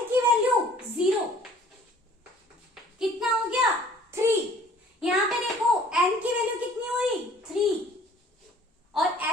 की वैल्यू 0, कितना हो गया 3। यहाँ पे देखो n की वैल्यू कितनी हुई 3 और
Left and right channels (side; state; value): both; normal; correlation 0.54